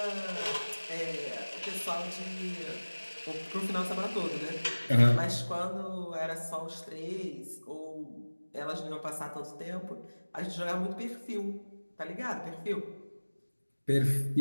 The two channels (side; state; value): both; inverted; correlation -1.00